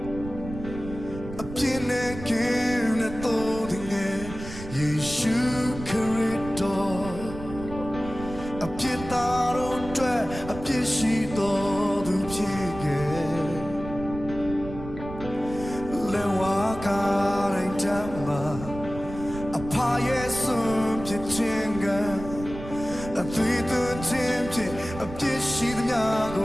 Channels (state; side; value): noise; right; rumble, 11 dB below the sound